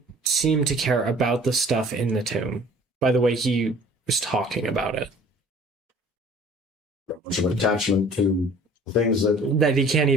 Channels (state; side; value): normal; both; correlation 0.50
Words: seem to care about the stuff in the tomb. By the way, he was talking about it. Much of an attachment to things that That he can't